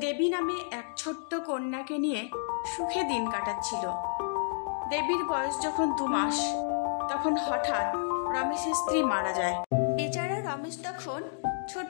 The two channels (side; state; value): right; silent; digital silence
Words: দেবী নামে এক ছোট্ট কন্যাকে নিয়ে সুখে দিন কাটাচ্ছিল। দেবীর বয়স যখন 2 মাস, তখন হঠাৎ রমেশের স্ত্রী মারা যায়। বেচারা রমেশ তখন